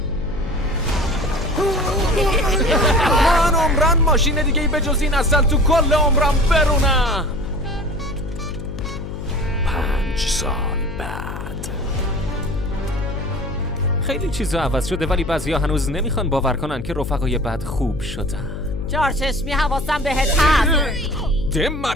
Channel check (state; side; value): noise; left; hum, 8 dB below the sound